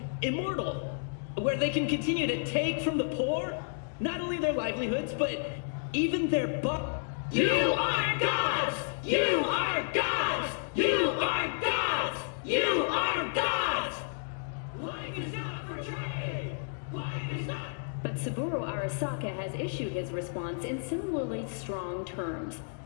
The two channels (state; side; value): silent; right; digital silence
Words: immortal? Where they can continue to take from the poor? Not only their livelihoods, but even their You are gods! You are gods! You are gods! You are gods! Life is not for trade! Life is not... But Saburo Arasaka has issued his response in similarly strong terms.